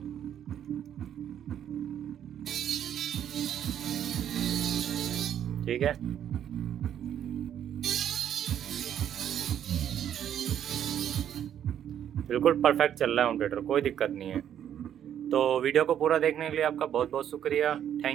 ठीक है, बिल्कुल परफेक्ट चल रहा है होम थिएटर, कोई दिक्कत नहीं है। तो वीडियो को पूरा देखने के लिए आपका बहुत बहुत शुक्रिया,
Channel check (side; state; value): left; quieter; 9.8 dB